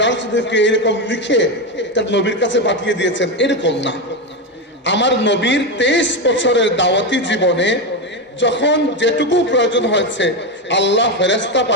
শরীফকে এরকম লিখে তার নবীর কাছে পাঠিয়ে দিয়েছেন এরকম না। আমার নবীর 23 বছরের দাওয়াতি জীবনে যখন যেটুকু প্রয়োজন হয়েছে আল্লাহ ফেরেশতা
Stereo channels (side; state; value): both; normal; correlation 0.12